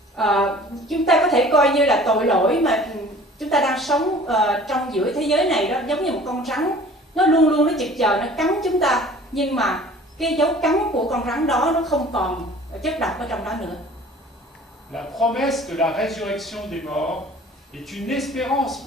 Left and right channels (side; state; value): both; normal; correlation 0.47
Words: Chúng ta có thể coi như là tội lỗi mà chúng ta đang sống trong giữa thế giới này đó, giống như một con rắn, nó luôn luôn nó chực chờ nó cắn chúng ta, nhưng mà cái dấu cắn của con rắn đó nó không còn chất độc ở trong đó nữa. La promesse de la résurrection des morts est une espérance